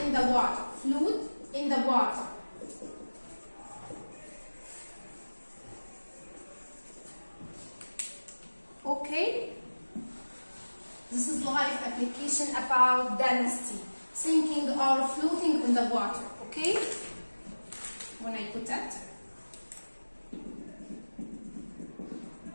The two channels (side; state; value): both; inverted; correlation -1.00